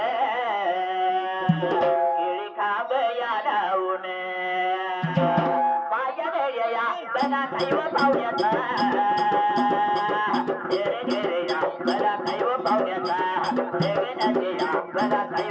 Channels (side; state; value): both; identical; correlation 1.00